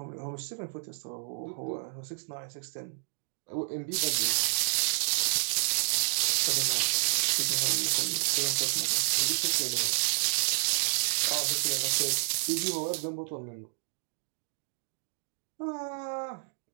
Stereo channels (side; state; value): left; silent; digital silence